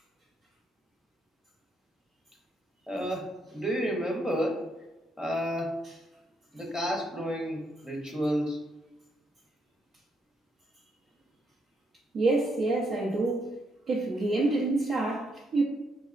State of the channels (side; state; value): both; normal; correlation 0.77